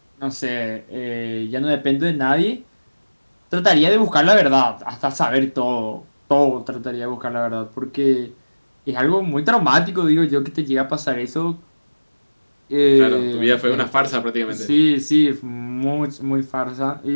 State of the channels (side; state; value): both; inverted; correlation -1.00